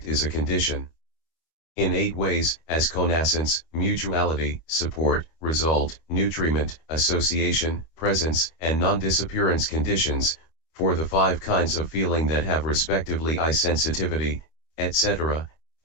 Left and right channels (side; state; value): right; late; 25 ms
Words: is a condition in 8 ways, as connascence, mutuality, support, result, nutriment, association, presence, and non-disappearance conditions, for the 5 kinds of feeling that have respectively eye sensitivity, etc.,